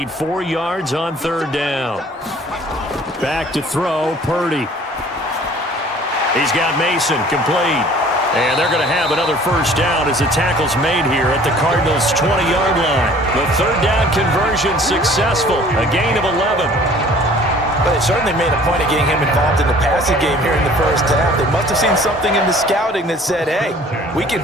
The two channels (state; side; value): normal; both; correlation 0.51